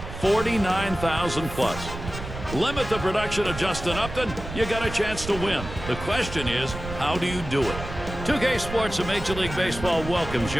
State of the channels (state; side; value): noise; right; rumble, 9 dB below the sound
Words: 49,000 plus. Limit the production of Justin Upton, you got a chance to win. The question is, how do you do it? 2K Sports and Major League Baseball welcomes